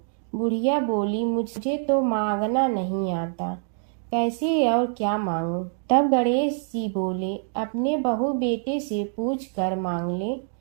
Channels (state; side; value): silent; left; 62 dB below the other